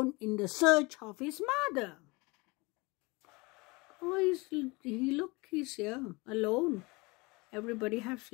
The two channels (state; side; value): quieter; right; 25.7 dB